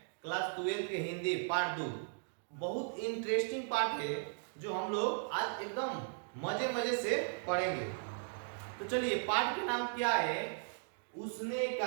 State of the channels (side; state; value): left; silent; digital silence